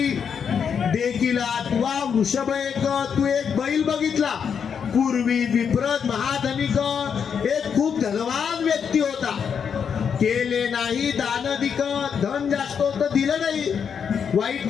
देखिला तुवा वृषभ तू एक बैल बघितला. पूर्वी विप्रत महाधनिक एक खूप धनवान व्यक्ती होता. केले नाही दानधिक, धन जास्त होतं दिलं नाही, वाईट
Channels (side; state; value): right; quieter; 7.1 dB